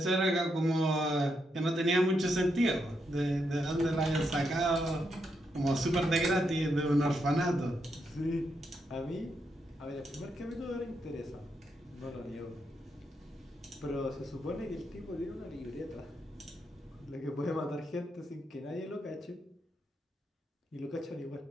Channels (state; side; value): normal; both; correlation 0.81